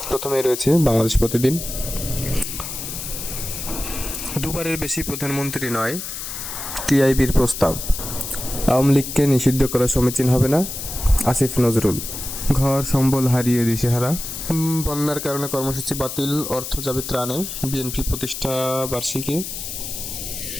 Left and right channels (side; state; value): left; noise; hiss, 7 dB below the sound